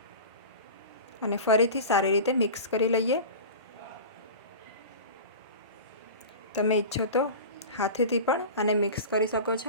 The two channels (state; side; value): inverted; both; correlation -0.32